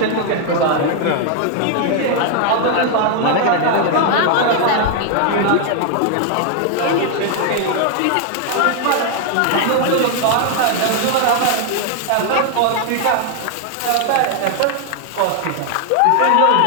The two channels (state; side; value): different; both; correlation 0.00